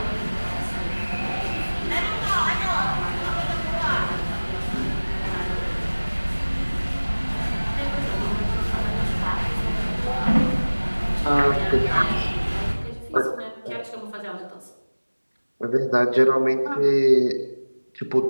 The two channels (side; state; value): both; inverted; correlation -1.00